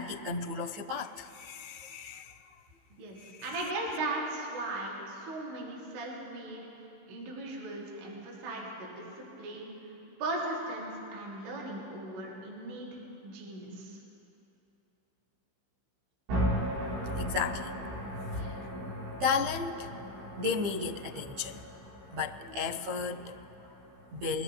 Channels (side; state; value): left; late; 15 ms